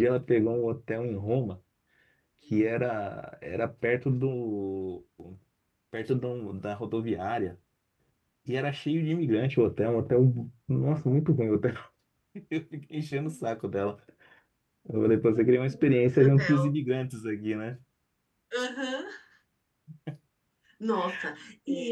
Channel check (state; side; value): identical; both; correlation 1.00